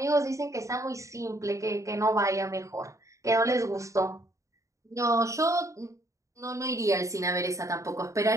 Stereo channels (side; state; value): left; late; 0.15 ms